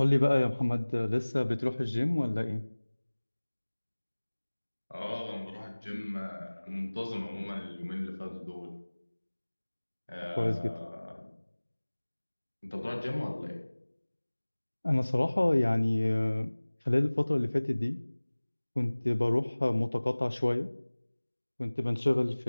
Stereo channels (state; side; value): inverted; both; correlation -1.00